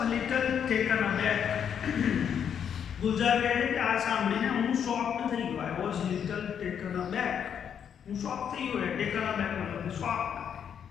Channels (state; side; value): quieter; right; 8.2 dB